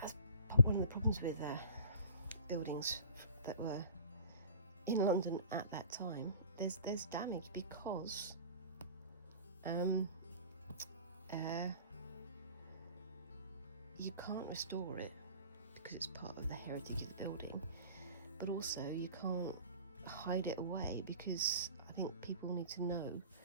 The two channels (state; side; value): inverted; both; correlation -0.42